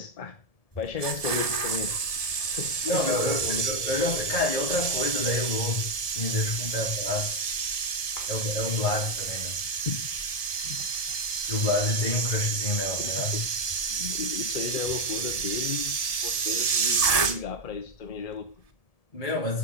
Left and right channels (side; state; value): right; late; 1.7 ms